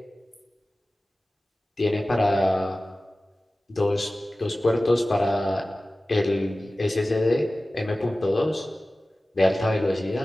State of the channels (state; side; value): normal; both; correlation 0.97